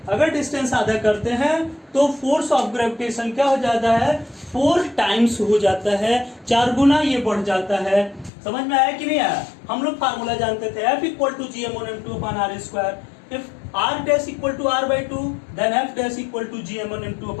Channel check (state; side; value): drops out; right; at 8.3 s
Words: अगर डिस्टेंस आधा करते हैं तो फोर्स ऑफ ग्रेविटेशन क्या हो जाता है, 4 टाइम्स हो जाता है, 4 गुना ये बढ़ जाता है। समझ में आया कि नहीं आया? हम लोग फार्मूला जानते थे F equal to G m1 m2 upon r square, if r dash equal to r/2 then F dash equal to G m1 m2